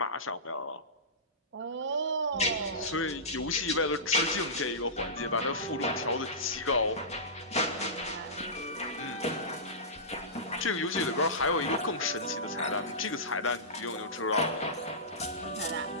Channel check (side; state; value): both; normal; correlation -0.20